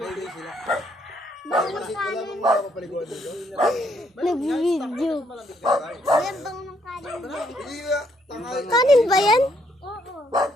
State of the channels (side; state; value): both; normal; correlation 0.71